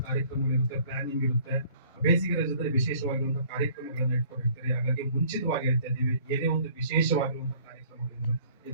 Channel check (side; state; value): both; inverted; correlation -0.55